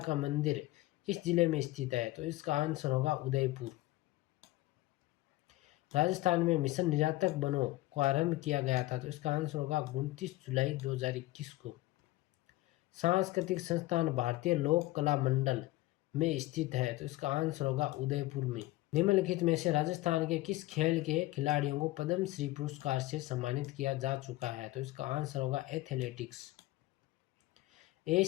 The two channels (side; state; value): right; quieter; 18.0 dB